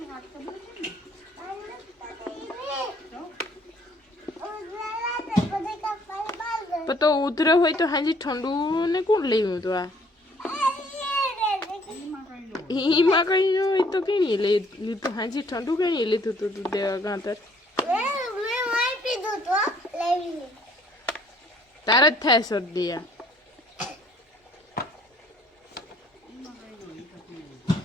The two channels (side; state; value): both; normal; correlation 0.61